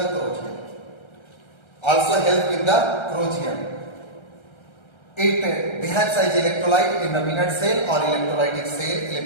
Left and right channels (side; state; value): right; late; 1.3 ms